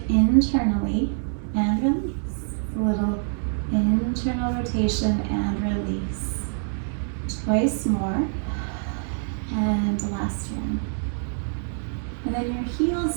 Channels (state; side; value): silent; left; digital silence